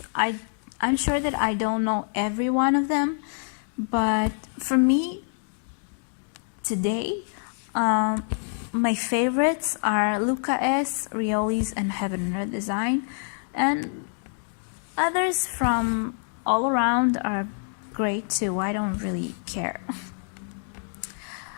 I'm sure that I don't know every one of them, but for me today, my favorites are Luca S, Rioli's, and Heaven and Earth Design, and others from all around are great too. I don't really care.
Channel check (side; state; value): right; silent; 57 dB below the other